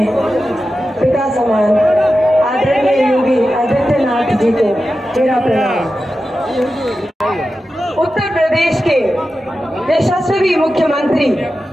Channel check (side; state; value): both; normal; correlation 0.92